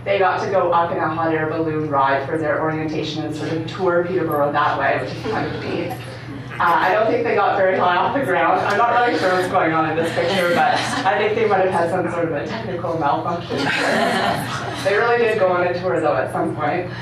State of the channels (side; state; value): both; identical; correlation 1.00